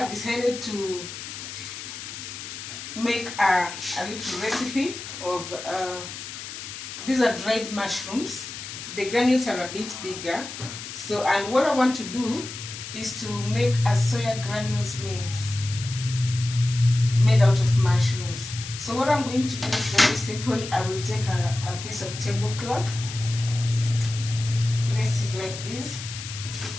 decided to make a little recipe of these are dried mushrooms. The granules are a bit bigger, so and what I want to do is to make a soya granules mince made out of mushrooms. So what I'm going to do is very simple. I will take a piece of tablecloth, place it like this,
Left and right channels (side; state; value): left; noise; hiss, 10 dB below the sound